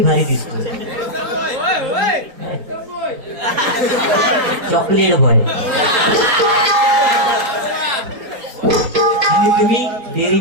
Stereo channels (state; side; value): late; left; 4.3 ms